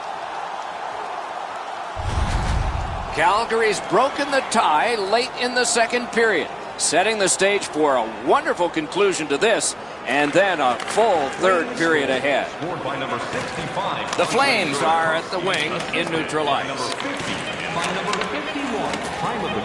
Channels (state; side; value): identical; both; correlation 1.00